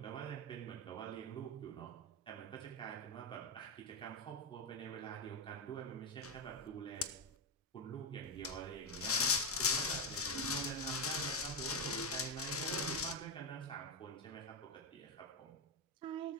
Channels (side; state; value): both; normal; correlation 0.07